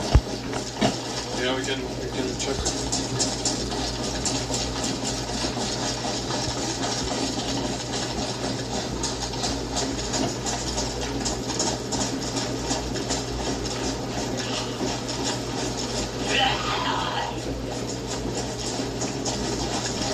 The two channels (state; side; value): identical; both; correlation 1.00